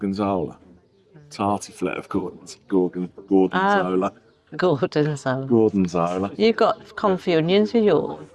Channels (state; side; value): identical; both; correlation 1.00